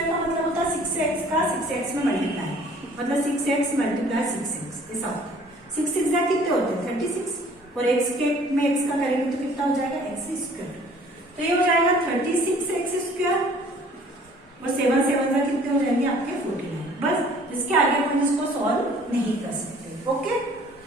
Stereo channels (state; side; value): normal; both; correlation 0.54